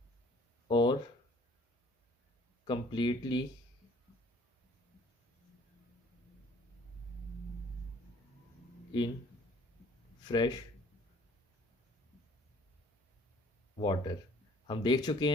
और कंप्लीटली इन फ्रेश वाटर। हम देख चुके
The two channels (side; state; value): both; normal; correlation 0.56